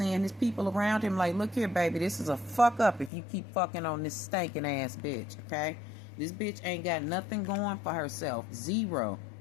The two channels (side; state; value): right; drops out; at 3.1 s